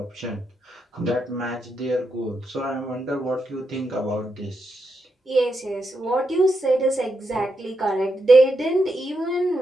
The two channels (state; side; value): normal; both; correlation 0.83